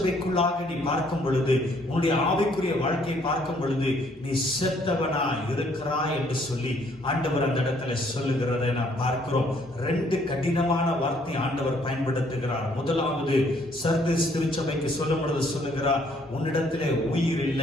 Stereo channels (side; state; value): both; normal; correlation 0.65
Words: நீ பார்க்கும் பொழுது, உன்னுடைய ஆவிக்குரிய வாழ்க்கையை பார்க்கும் பொழுது நீ செத்தவனா இருக்கிறாய் என்று சொல்லி ஆண்டவர் அந்த இடத்துல சொல்லுகிறதை நாம் பார்க்கிறோம். 2 கடினமான வார்த்தை ஆண்டவர் பயன்படுத்துகிறார். முதலாவது சர்தீஸ் திருச்சபைக்கு சொல்லும் பொழுது சொல்லுகிறார், உன்னிடத்திலே உயிர்